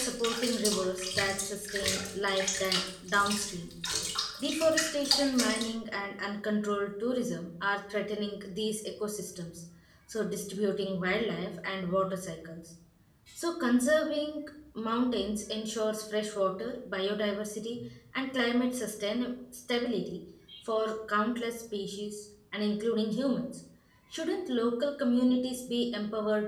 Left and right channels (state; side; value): identical; both; correlation 1.00